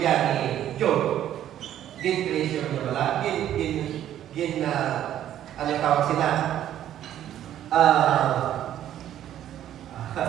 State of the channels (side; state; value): left; quieter; 11.5 dB